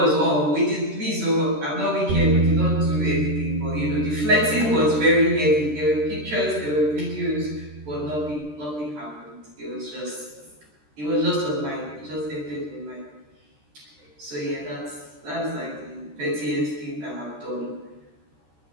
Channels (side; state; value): left; late; 13 ms